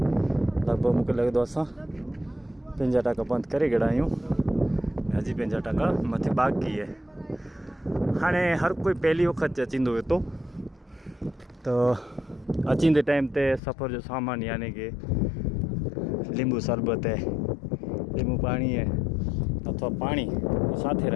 લગભગ મૂકે લગે તો અસાं 50% બંધ કરી ગया आहियूं हजी 50% मथे बाक़ी है। हाणे हर कोई पहली वक्त अचींदो हुयो तो अचींदे टाइम ते सफ़र जो सामान यानी कि लींबू शरबत है, लींबू पानी है अथवा पानी साथे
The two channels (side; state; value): right; drops out; at 13.6 s